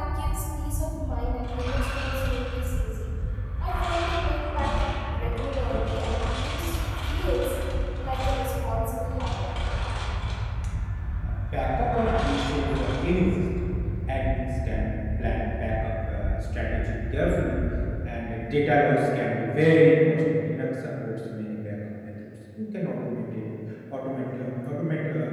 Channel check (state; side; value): identical; both; correlation 1.00